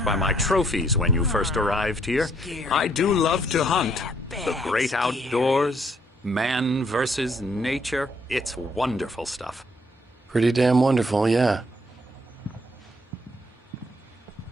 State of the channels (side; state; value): both; normal; correlation 0.68